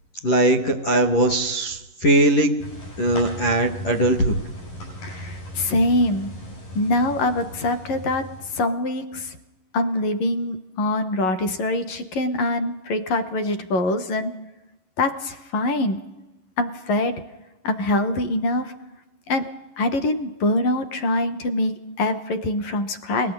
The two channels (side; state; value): right; late; 11 ms